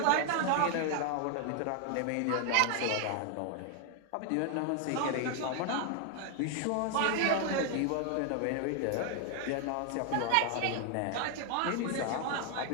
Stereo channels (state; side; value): different; both; correlation 0.00